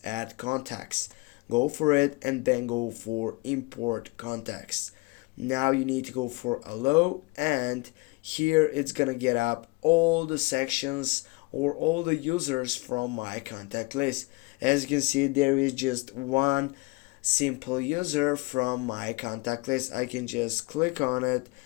add contacts. Go for it and then go for import contacts. Now you need to go for allow, and here it's gonna get up all the sections or all the users from my contact list. As you can see, there is just one simple user from my contact list. I can just click on it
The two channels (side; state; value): right; quieter; 26.1 dB